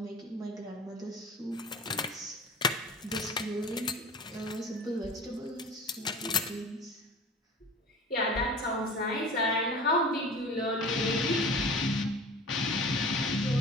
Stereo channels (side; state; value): both; normal; correlation 0.38